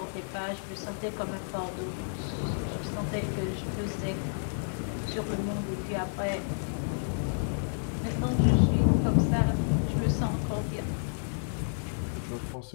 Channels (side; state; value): right; silent; digital silence